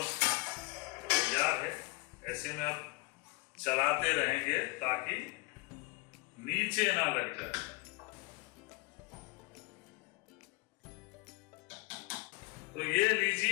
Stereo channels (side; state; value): right; quieter; 26.0 dB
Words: तैयार है। ऐसे में आप चलाते रहेंगे ताकि नीचे ना लग जाए। तो ये